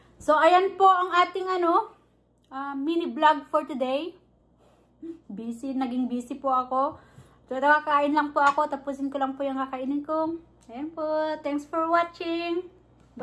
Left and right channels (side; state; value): both; identical; correlation 1.00